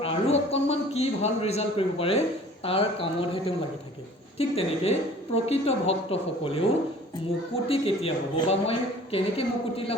আৰু অকণমান কি ভাল ৰিজাল্ট কৰিব পাৰে তাৰ কামতহে তেওঁ লাগি থাকে। ঠিক তেনেকৈ প্ৰকৃত ভক্তসকলেও মুকুতি কেতিয়া হ'ব বা মই কেনেকৈ মুকুতি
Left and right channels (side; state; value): both; normal; correlation 0.49